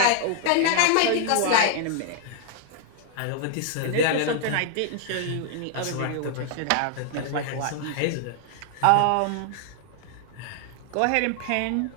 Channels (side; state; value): both; different; correlation 0.00